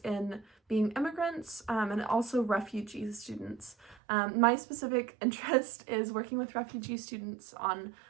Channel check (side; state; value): left; drops out; at 4.0 s